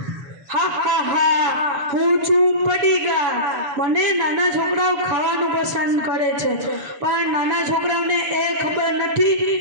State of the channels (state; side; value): late; left; 7.1 ms